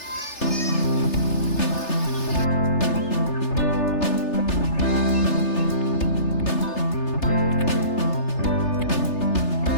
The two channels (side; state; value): right; late; 3.3 ms